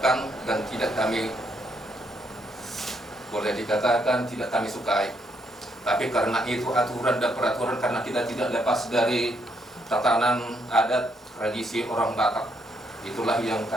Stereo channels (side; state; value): both; normal; correlation 0.74